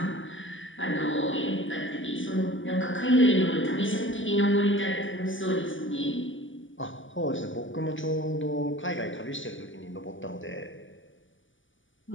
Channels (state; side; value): late; right; 0.56 ms